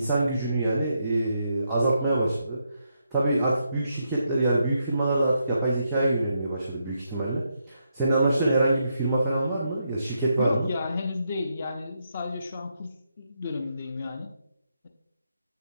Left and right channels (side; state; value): both; inverted; correlation -0.80